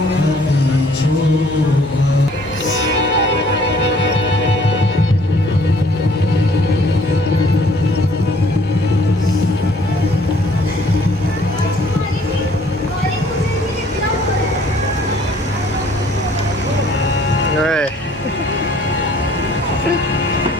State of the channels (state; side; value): noise; right; hum, 20 dB below the sound